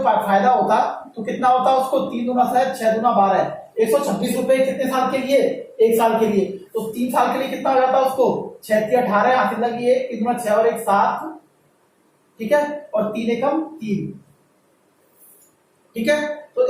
होता तो कितना होता उसको? 3 दूना 7, 6 दूना 12, 126 रुपए कितने साल के लिए? 1 साल के लिए। तो 3 साल के लिए कितना हो जाता उसको? 6 × 18 हाथ लगी 1 दूना 6 और 1 7, ठीक है। और 3 एकम 3, ठीक है, तो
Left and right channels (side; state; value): both; identical; correlation 1.00